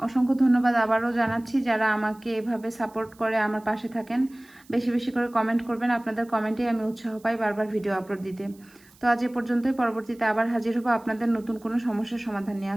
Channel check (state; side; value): noise; right; hiss, 28 dB below the sound